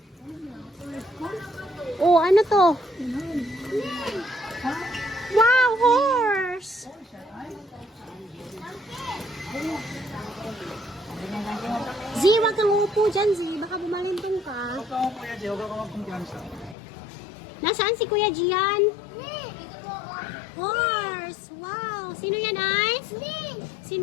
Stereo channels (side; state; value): right; drops out; at 16.8 s